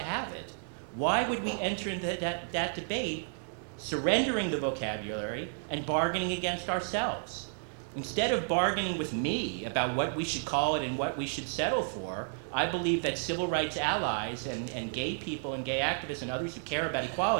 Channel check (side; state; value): left; silent; digital silence